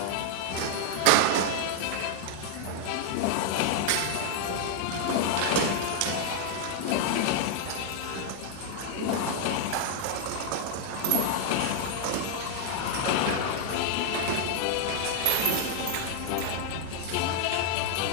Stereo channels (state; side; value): different; both; correlation 0.00